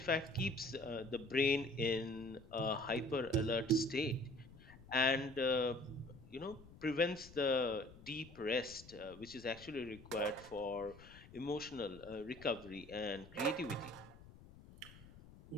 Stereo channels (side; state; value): left; noise; rumble, 19 dB below the sound